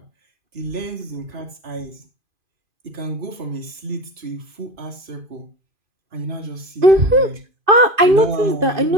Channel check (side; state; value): left; late; 2.5 ms